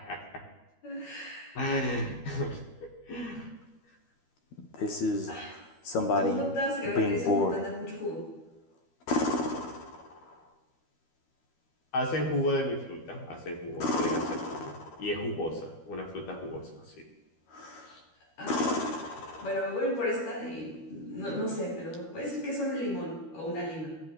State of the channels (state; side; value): late; right; 12 ms